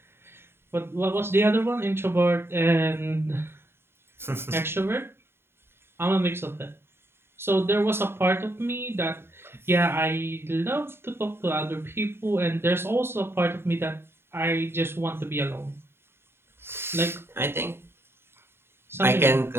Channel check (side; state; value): left; late; 0.11 ms